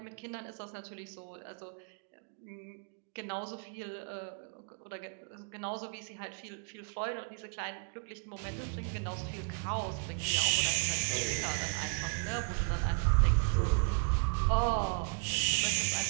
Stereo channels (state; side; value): quieter; left; 37.2 dB